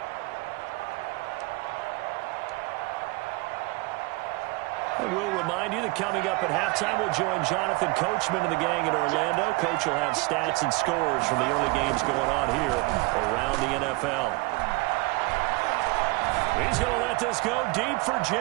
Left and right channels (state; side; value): quieter; left; 25.5 dB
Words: And we'll remind you that coming up at halftime, we'll join Jonathan Coachman and the gang in Orlando. Coach will have stats and scores from the early games going on here around the NFL. He's going to let this go deep for